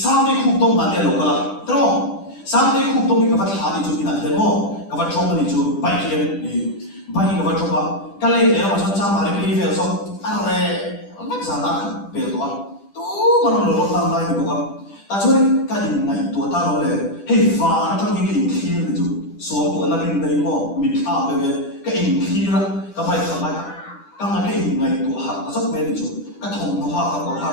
sa me khu tong ban le lo ka la tro sa me khu tong ni ka va tha ni chu ina the mo ka va thong ni chu bai kien ni bai ka va thong ba ka le le ma chon cha ma le pe fe so a re ma za na pe to tu ma no lo tam lai ni ko ka ta chu ni ka din ngai tu ta lo le hei va na ta ni ki thir ni chu so to na rin dai mo mi tha pe ve ka in thira ka bai ka ngai ka ngai in ngai tu ha ta sok me ni chu ka thong no ha ka ko ha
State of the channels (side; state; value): right; late; 10 ms